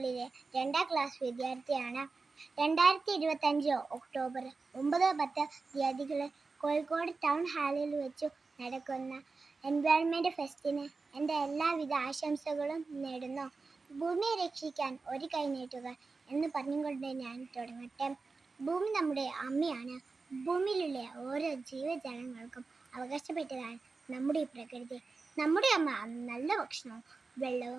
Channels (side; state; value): left; quieter; 4.1 dB